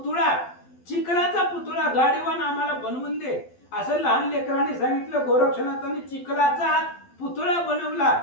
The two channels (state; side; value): late; right; 12 ms